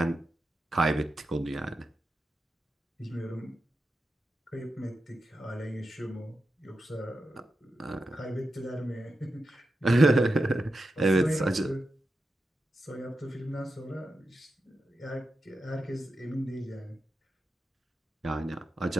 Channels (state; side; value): normal; both; correlation 0.89